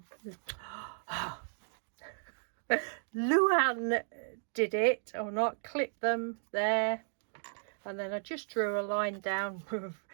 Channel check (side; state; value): left; silent; digital silence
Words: Luann did it or not. Clip them there. And then I just drew a line down